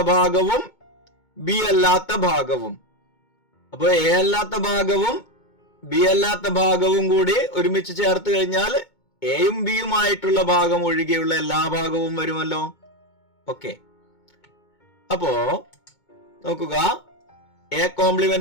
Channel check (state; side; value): late; right; 2.2 ms